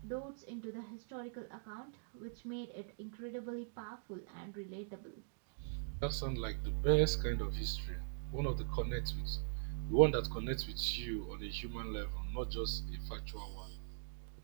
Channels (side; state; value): left; silent; digital silence